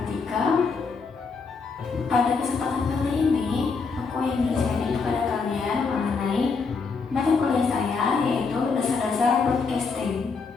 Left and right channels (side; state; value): right; quieter; 4.8 dB